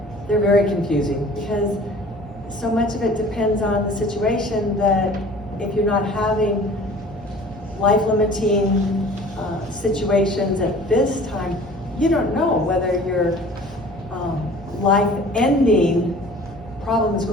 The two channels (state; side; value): normal; both; correlation 0.46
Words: they're very confusing, because so much of it depends on the situation, that if you're not having life-limiting situations at this time, you don't know whether your life-ending problem is